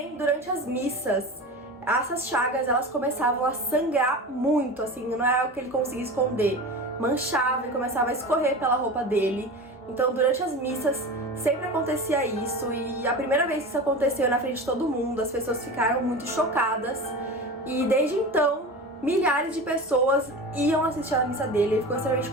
durante as missas essas chagas elas começavam a sangrar muito, assim, não é algo que ele conseguia esconder, manchava e começava a escorrer pela roupa dele. Então durante as missas sempre acontecia isso, e a primeira vez que isso aconteceu na frente de todo mundo, as pessoas ficaram muito chocadas, e desde então milhares de pessoas iam assistir a missa dele. Ele ficou extremamente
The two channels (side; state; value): both; normal; correlation 0.30